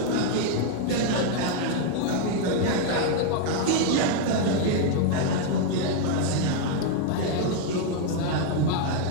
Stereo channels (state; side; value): different; both; correlation 0.00